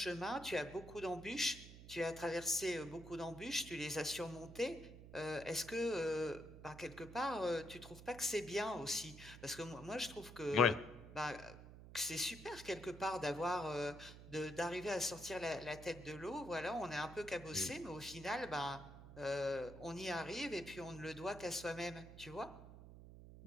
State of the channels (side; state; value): right; noise; hum, 15 dB below the sound